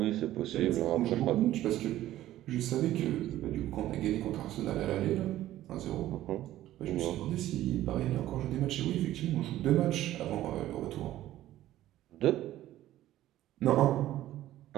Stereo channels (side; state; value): left; quieter; 14.1 dB